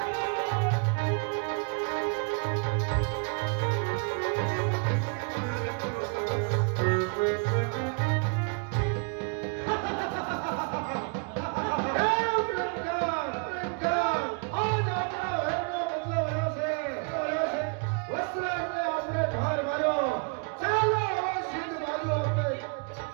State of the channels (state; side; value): quieter; left; 36.7 dB